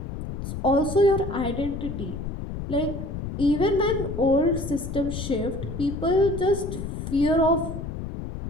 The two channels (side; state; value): left; noise; rumble, 6 dB below the sound